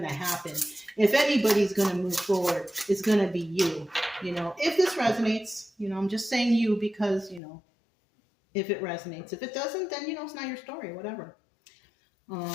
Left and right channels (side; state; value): right; drops out; at 7.4 s